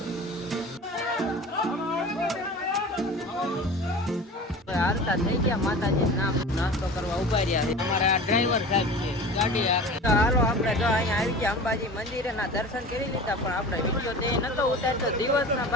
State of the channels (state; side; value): normal; both; correlation 0.37